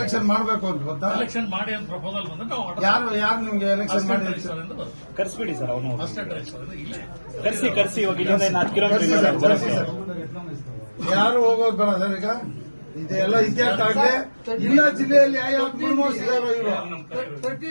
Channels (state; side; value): inverted; both; correlation -1.00